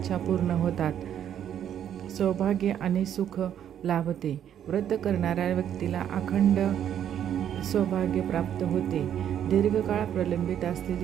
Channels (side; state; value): left; quieter; 9.8 dB